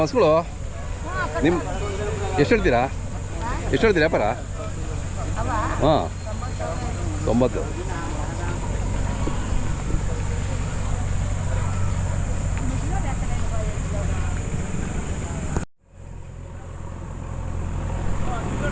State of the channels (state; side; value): identical; both; correlation 1.00